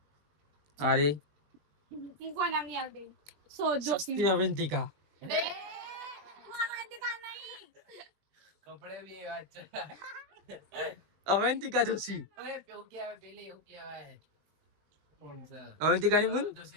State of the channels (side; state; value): left; late; 20 ms